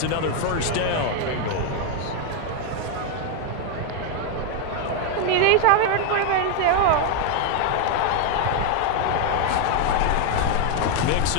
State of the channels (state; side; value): different; both; correlation 0.01